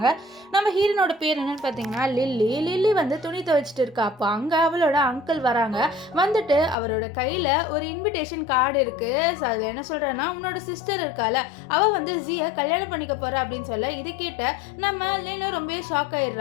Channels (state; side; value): drops out; right; at 6.8 s